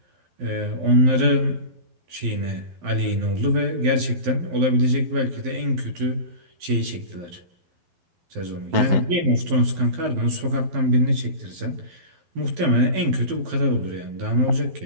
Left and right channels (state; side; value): late; left; 12 ms